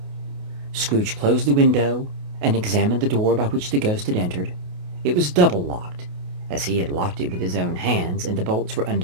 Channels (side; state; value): left; late; 28 ms